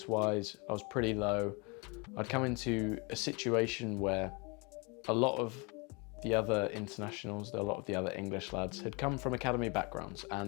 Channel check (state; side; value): quieter; right; 30.4 dB